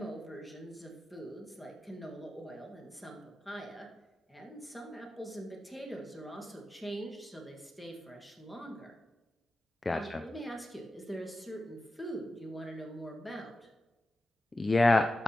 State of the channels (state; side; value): normal; both; correlation 0.92